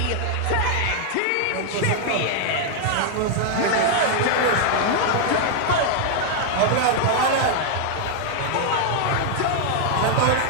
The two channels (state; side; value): different; both; correlation 0.00